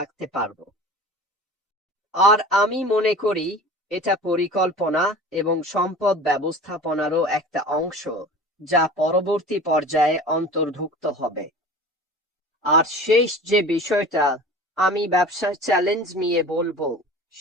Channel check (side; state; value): both; normal; correlation 0.39